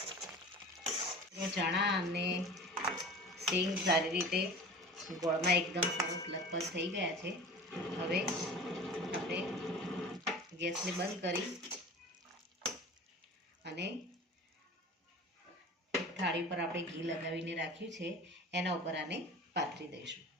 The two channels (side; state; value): both; normal; correlation 0.38